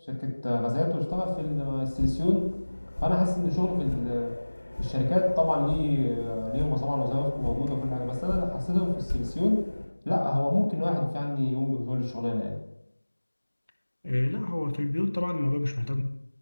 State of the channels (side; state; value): both; inverted; correlation -1.00